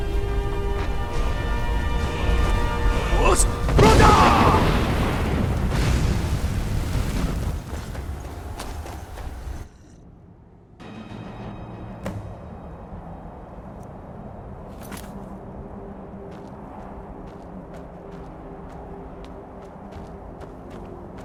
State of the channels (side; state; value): both; identical; correlation 1.00